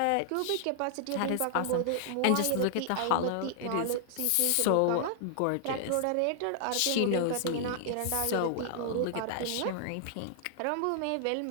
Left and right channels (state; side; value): different; both; correlation -0.01